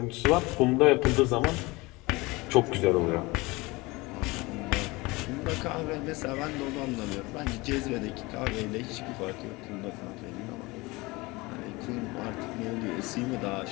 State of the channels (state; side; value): quieter; right; 23.1 dB